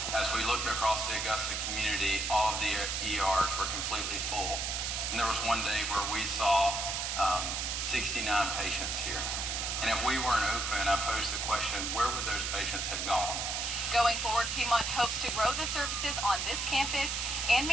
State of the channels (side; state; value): right; noise; hiss, 1 dB below the sound